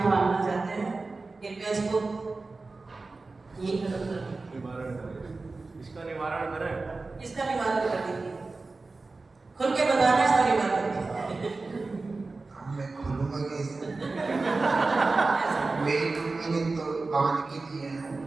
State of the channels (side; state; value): left; quieter; 3.7 dB